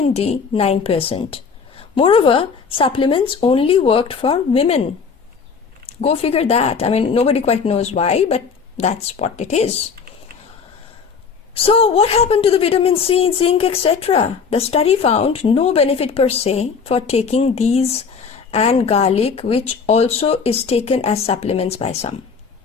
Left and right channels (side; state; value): right; quieter; 5.7 dB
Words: D 9%. Moreover, supplements only worked for women. Go figure that. I mean, nobody quite knows why, but that's what it is. So what happened to the vitamin C, zinc, etc.? The study found no benefit per se for taking these and garlic, which also is taken as supplements by some.